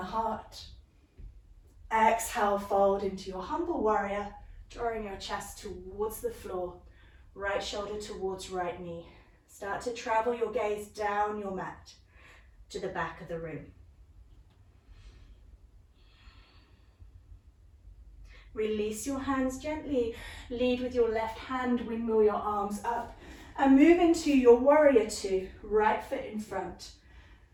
Exhale, fold into your humble warrior, drawing your chest towards the floor. Right shoulder towards right knee. Start to travel your gaze down your mat to the back of the room. Release your hands gently. Lead with your left hand, windmill your arms up. And move into your warrior two. Right foot in front.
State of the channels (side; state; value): both; identical; correlation 1.00